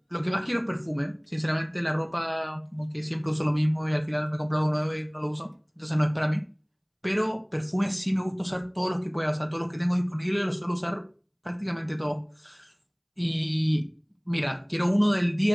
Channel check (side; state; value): both; identical; correlation 1.00